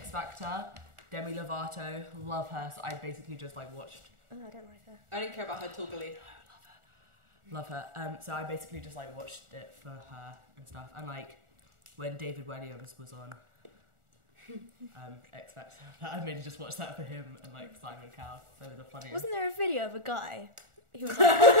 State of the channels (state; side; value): late; left; 1.4 ms